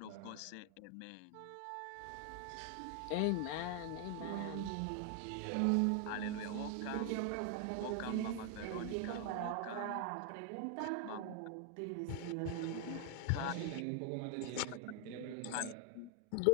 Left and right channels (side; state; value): both; different; correlation 0.00